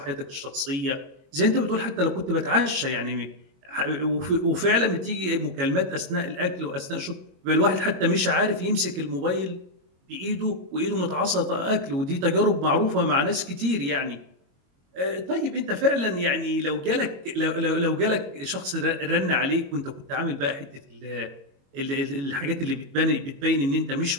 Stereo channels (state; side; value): late; left; 22 ms